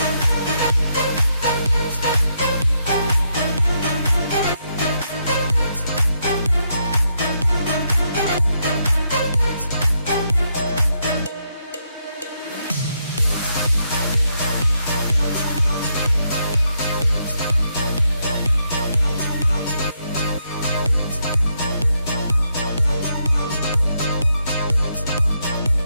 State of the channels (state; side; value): inverted; both; correlation -0.79